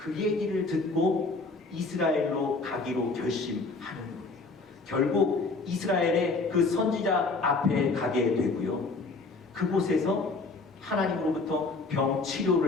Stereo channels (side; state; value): right; quieter; 3.7 dB